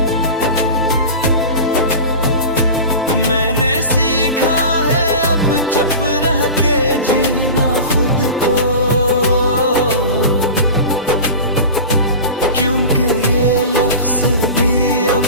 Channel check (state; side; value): inverted; both; correlation -0.32